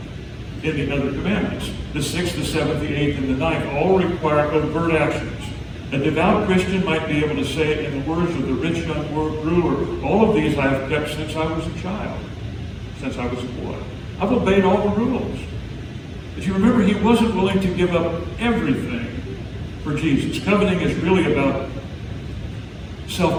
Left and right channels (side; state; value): both; identical; correlation 1.00